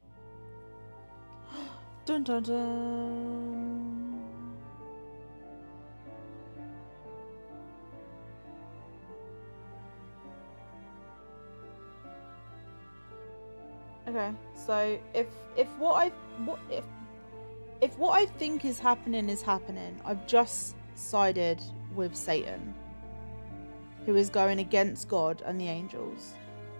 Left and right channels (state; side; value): inverted; both; correlation -1.00